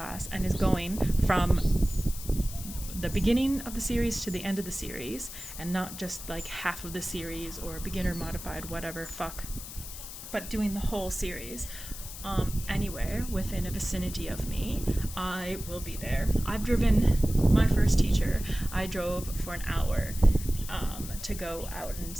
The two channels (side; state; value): left; noise; hiss, 11 dB below the sound